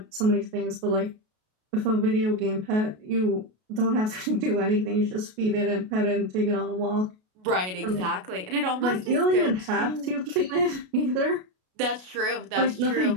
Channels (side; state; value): left; late; 33 ms